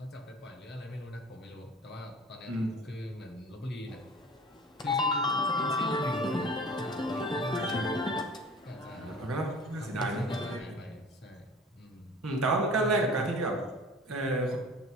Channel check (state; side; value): normal; both; correlation 0.43